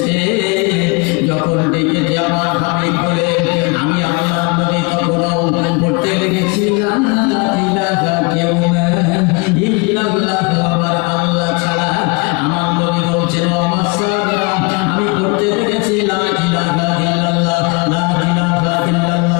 যখন ডেকেছে আমার হাবিব বলে, আমি আল্লাহ নবী তখন পড়তে লেগেছি, লা ইলাহা কেউ না ইল্লাল্লাহ, আমার আল্লাহ ছাড়া। আমার নবী বলছেন, আমার সাহাবীরা, আমি পড়তে লেগেছি, লা ইলাহা ইল্লাল্লাহ, লা ইলাহা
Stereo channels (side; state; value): right; quieter; 29.0 dB